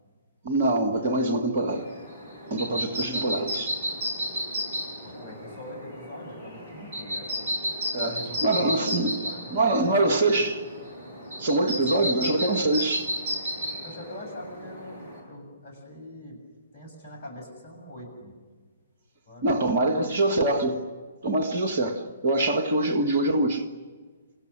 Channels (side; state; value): both; inverted; correlation -0.54